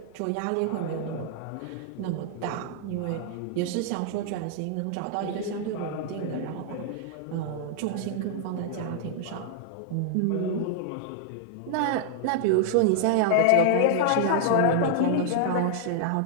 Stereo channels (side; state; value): both; different; correlation -0.01